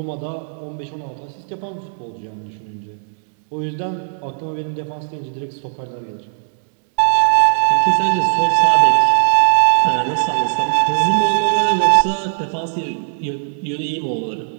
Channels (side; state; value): left; silent; digital silence